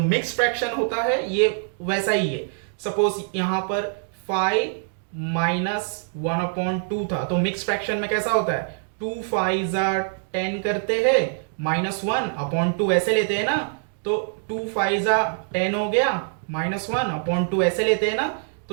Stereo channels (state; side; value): silent; left; digital silence